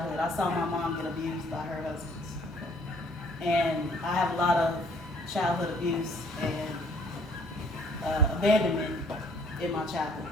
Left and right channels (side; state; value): both; normal; correlation 0.60